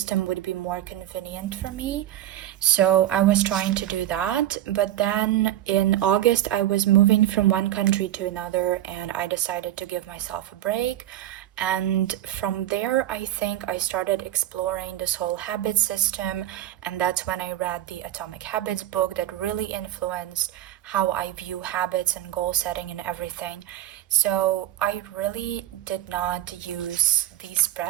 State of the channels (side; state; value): left; quieter; 12.9 dB